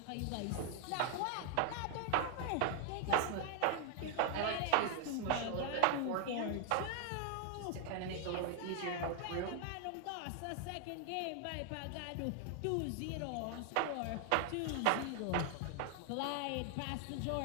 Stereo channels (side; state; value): both; different; correlation 0.00